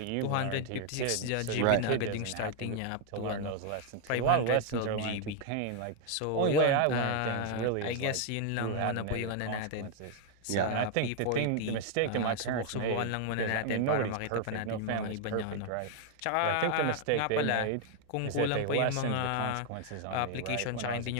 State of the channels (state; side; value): different; both; correlation 0.00